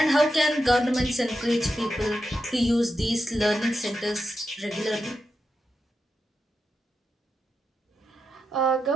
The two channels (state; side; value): normal; both; correlation 0.88